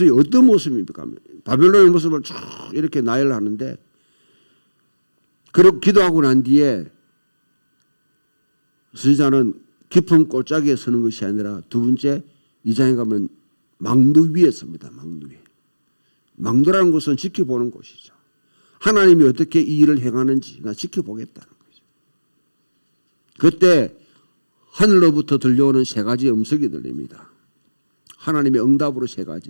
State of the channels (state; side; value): inverted; both; correlation -1.00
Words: 어떤 모습입니까? 바벨론의 모습을 쭉 이렇게 나열하는데, 그렇게 기도하고 난 뒤에 선지자는 깊은 골짜기에 서는 것이 아니라 두 번째 2장에 가면 망두 위에 섭니다. 망두 위에. 망두라는 것은 지켜보는 곳이죠. 하나님이 어떻게 이 일을 행하는지 나 지켜보겠다는 거죠. 그때 하늘로부터 들려오는 세 가지 음성이 들립니다. 하나님의 응답으로 세